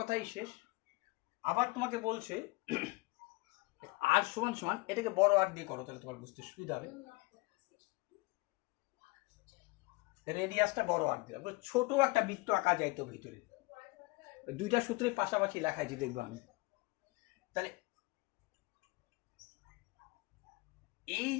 শেষ। আবার তোমাকে বলছে আর সমান সমান, এটাকে বড় আর দিয়ে করো, তাহলে তোমার বুঝতে সুবিধা হবে। রেডিয়াসটা বড় আর দিয়ে, ছোট একটা বৃত্ত আঁকা যাইতো ভিতরে, দুইটা সূত্রের পাশাপাশি লেখাইছি দেখবো আমি। তাহলে এই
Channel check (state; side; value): quieter; right; 24.6 dB